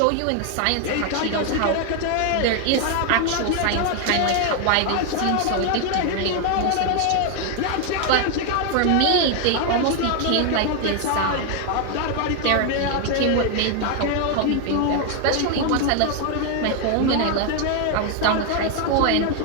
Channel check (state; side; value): different; both; correlation 0.01